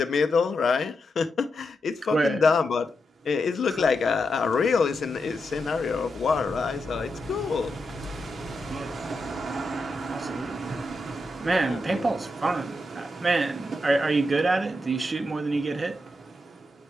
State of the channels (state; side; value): normal; both; correlation 0.86